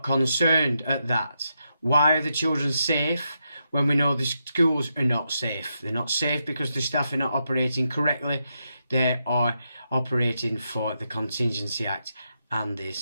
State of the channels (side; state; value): both; inverted; correlation -0.84